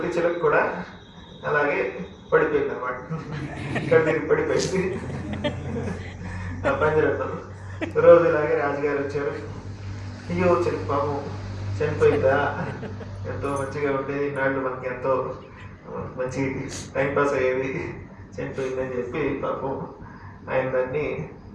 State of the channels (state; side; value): identical; both; correlation 1.00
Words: చిలక కూడా అలాగే పడిపోయింది అనమాట, ఇక్కడ తిరిగి పడిపోయింది ఆ పంజరంలో. రోజు ఇలాగే రాజుగారు వచ్చారు. అయ్యో చిలక పాపం చనిపోయిందా, ఎంతో మంచిగా ఉండేది, నాళ్ళు మనకి ఎంతో మంచి టైంపాస్ అయ్యేది, చనిపోయిందని చెప్పి పాపం ఆయన దాన్ని